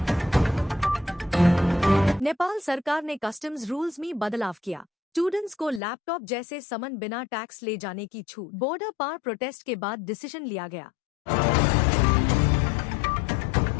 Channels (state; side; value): drops out; right; at 5.8 s